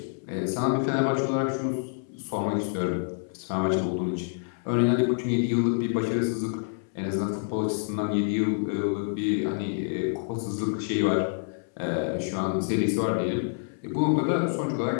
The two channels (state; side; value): silent; right; 60 dB below the other